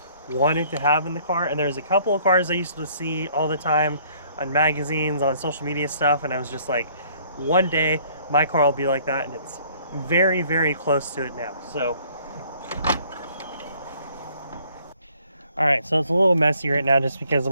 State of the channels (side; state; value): both; inverted; correlation -0.60